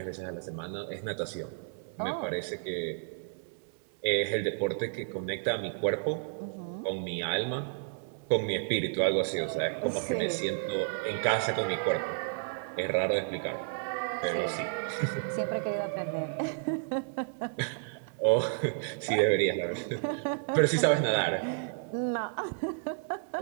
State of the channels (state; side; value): silent; left; 57 dB below the other